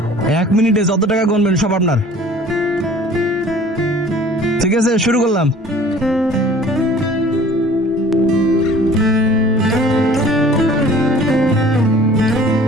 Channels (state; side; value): normal; both; correlation 0.49